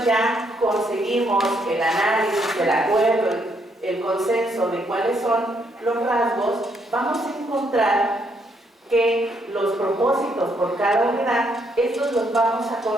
ya conseguimos el análisis, el acuerdo, el consenso de cuáles son los rasgos, vamos a encontrar que los propósitos por cada unidad, estos los vamos a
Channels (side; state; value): both; normal; correlation 0.73